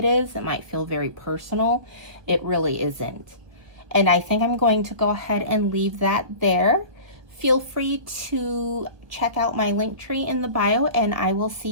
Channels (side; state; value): left; late; 1.1 ms